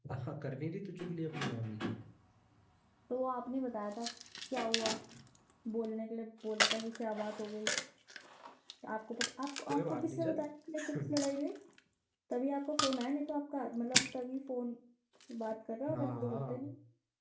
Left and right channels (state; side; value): identical; both; correlation 1.00